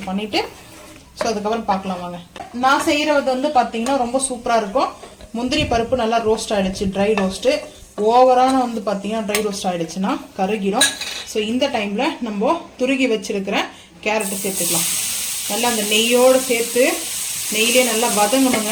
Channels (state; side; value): identical; both; correlation 1.00